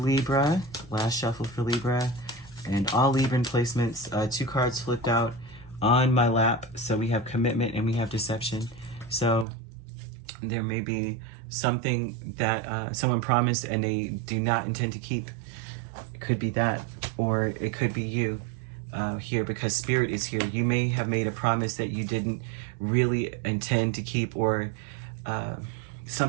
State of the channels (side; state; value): left; drops out; at 9.5 s